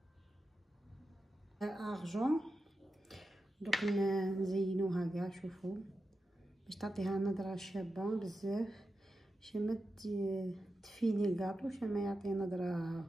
ارجون دوك نزينوها كاع. شوفوا باش تعطيها نظره شابه بزاف، باش ما تفيني الكاطو، باش ما يعطي نظره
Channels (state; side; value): normal; both; correlation 0.90